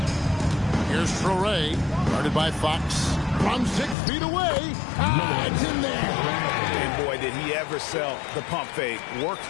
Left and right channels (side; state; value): right; drops out; at 4.0 s